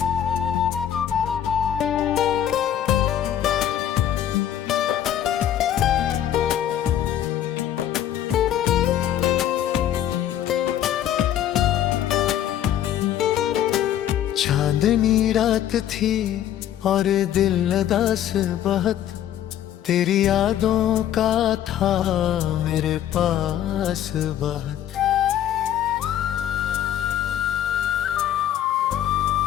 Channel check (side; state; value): right; quieter; 10.9 dB